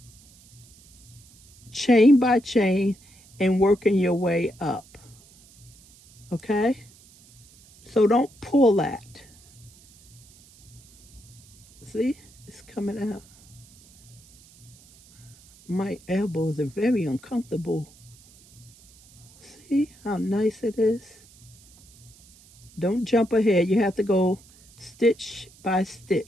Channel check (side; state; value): right; noise; hiss, 26 dB below the sound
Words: chain by chain and working your way up. Okay? So don't pull that. See? It's coming out. My elbows are very uncomfortable. See how nice it is? Don't jump ahead. You have to go stitch by